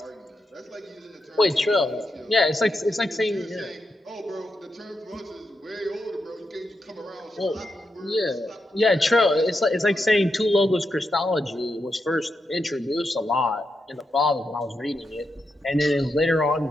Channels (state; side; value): normal; both; correlation 0.85